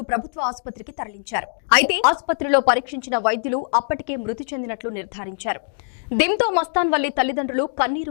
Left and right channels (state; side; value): silent; right; digital silence